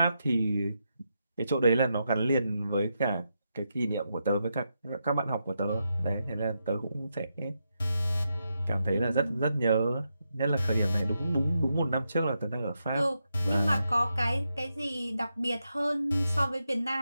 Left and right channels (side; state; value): both; inverted; correlation -0.84